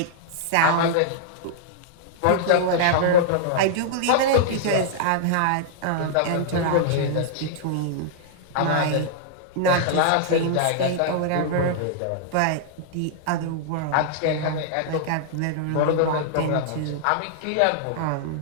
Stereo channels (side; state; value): both; different; correlation -0.01